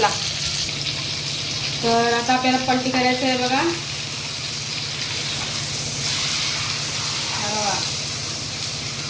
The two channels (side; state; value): both; identical; correlation 1.00